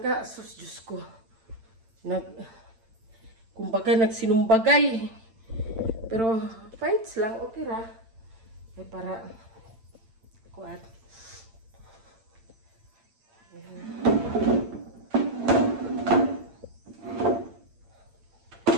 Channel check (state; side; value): late; left; 8.9 ms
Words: Sus, Diyos ko. Kumbaga nagsinumbagay. Pero fights lang, okay ra. Ay para kuat.